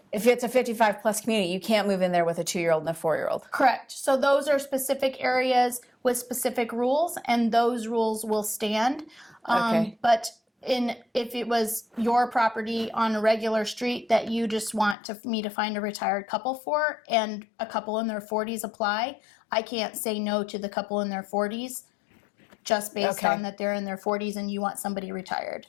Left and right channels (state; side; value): drops out; right; at 15.0 s